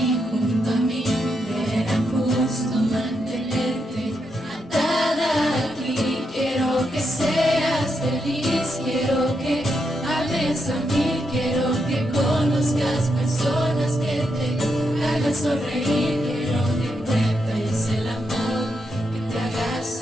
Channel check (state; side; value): normal; both; correlation 0.82